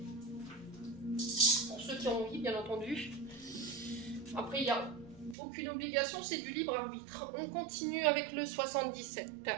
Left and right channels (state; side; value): drops out; left; at 5.4 s